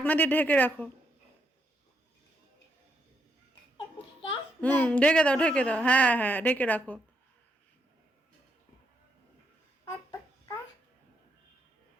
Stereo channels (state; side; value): normal; both; correlation 0.78